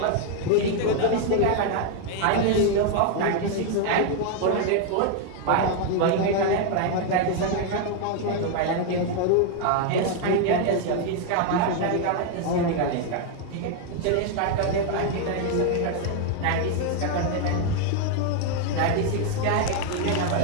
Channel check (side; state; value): both; different; correlation 0.00